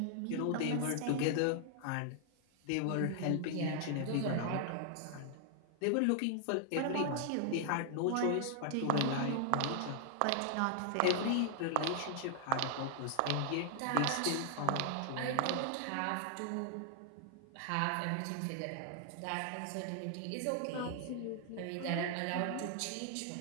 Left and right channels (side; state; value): both; different; correlation 0.00